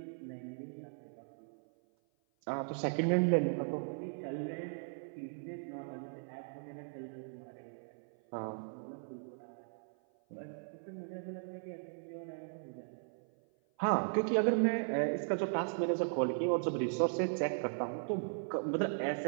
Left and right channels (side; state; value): left; silent; 53 dB below the other